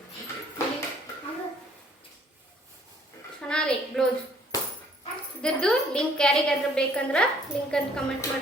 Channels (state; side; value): normal; both; correlation 0.60